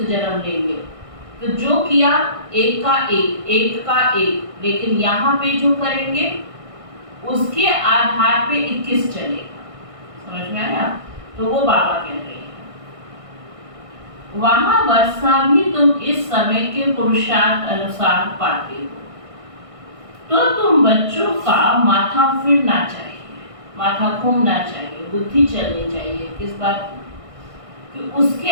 जन्म लेंगे। तो जो किया एक का एक, एक का एक, लेकिन यहाँ पे जो करेंगे उसके आधार पे 21 चलेगा। समझ में आया? तो वो बाबा कह रहे हैं वहां वर्षा भी तुम इस समय के पुरुषार्थ अनुसार पाते हो। तो तुम बच्चों का माथा फिरना चाहिए, माथा घूमना चाहिए, बुद्धि चलनी चाहिए। किस बात की? कि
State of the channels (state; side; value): late; left; 1.6 ms